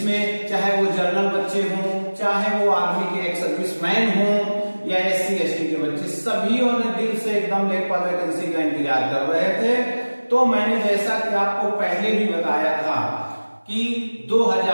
चाहे वो जनरल बच्चे हों, चाहे वो आर्मी के एक्स सर्विसमैन हों या SC ST के बच्चे, सभी ने दिल से एकदम लेखपाल वैकेंसी का इंतजार कर रहे थे। तो मैंने जैसा कि आपको पहले भी बताया था कि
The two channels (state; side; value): inverted; both; correlation -1.00